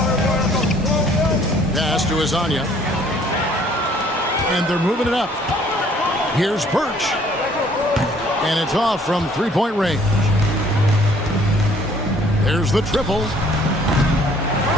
Pass to Hezonja. And they're moving it up. Here's Birch. And it's off from 3-point range. There's the triple.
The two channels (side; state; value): both; normal; correlation 0.59